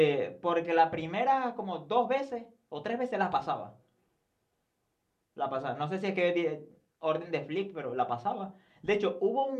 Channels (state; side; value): identical; both; correlation 1.00